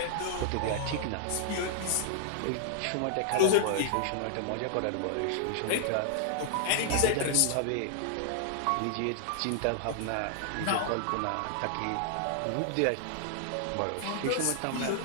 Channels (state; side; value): different; both; correlation -0.01